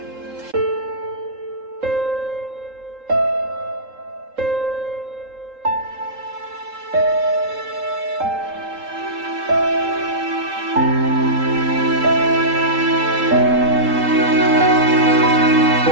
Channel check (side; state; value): left; late; 3.8 ms